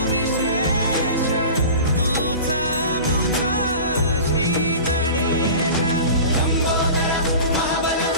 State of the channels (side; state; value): both; inverted; correlation -0.36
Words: विशेष तूच मुचा श्री गणेश